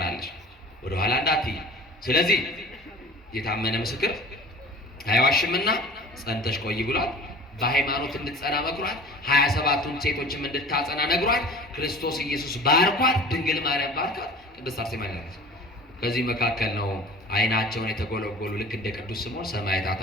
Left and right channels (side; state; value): both; normal; correlation 0.42